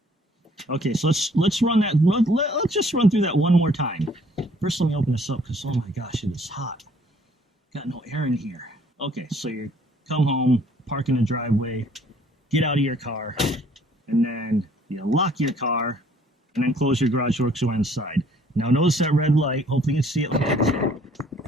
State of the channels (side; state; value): both; normal; correlation 0.60